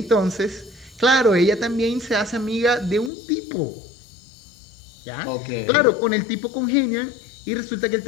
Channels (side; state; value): right; drops out; at 3.1 s